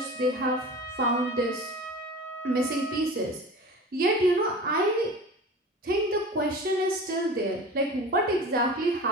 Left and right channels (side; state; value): both; normal; correlation 0.36